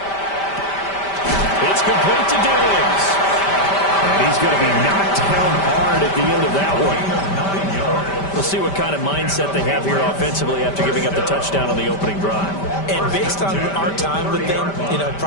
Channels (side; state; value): right; late; 5.1 ms